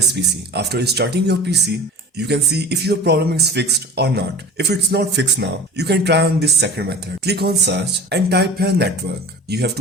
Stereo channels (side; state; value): both; normal; correlation 0.39